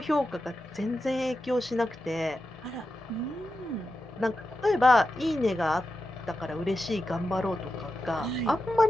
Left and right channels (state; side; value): normal; both; correlation 0.90